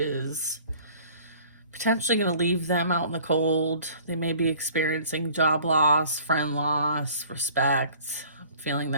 potentially going to leave them out in the cold. They may be experiencing job loss, friend loss, respect, feeling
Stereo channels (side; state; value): both; inverted; correlation -0.51